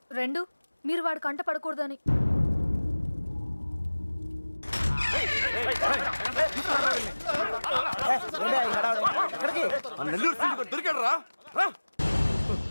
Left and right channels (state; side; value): inverted; both; correlation -1.00